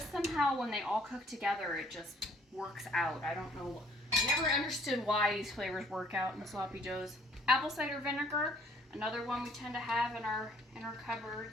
somehow, when they all cook together, it just works out. I don't know. I never understood why these flavors work out in the sloppy joes. Apple cider vinegar. Another one we tend to have in our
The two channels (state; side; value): normal; both; correlation 0.60